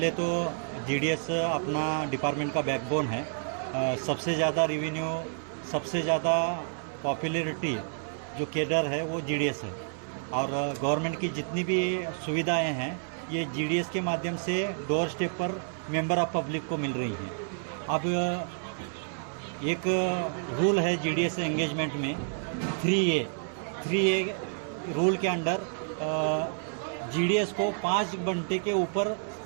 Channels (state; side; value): silent; left; 56 dB below the other